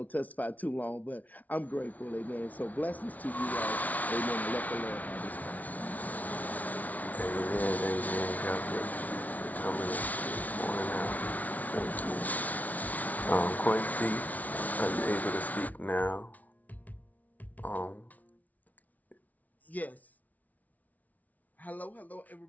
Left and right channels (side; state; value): right; late; 0.073 ms